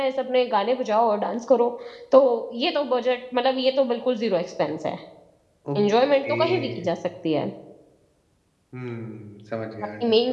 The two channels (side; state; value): both; identical; correlation 1.00